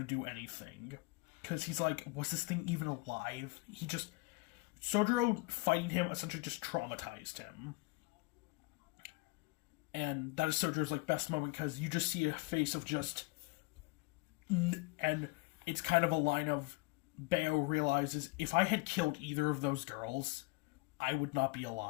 do anything. Because he's like, was this thing even alive? Sojiro fighting him essentially just traumatized him. And that is Sojiro's like best moment, because you just see a face of just... And it's kind of a line of, Bayo realizes, if I had killed either of those girls, I would not be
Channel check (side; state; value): right; quieter; 24.8 dB